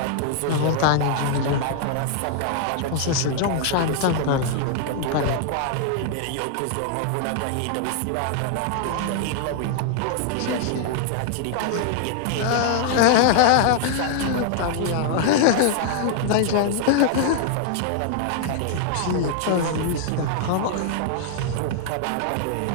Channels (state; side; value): different; both; correlation 0.00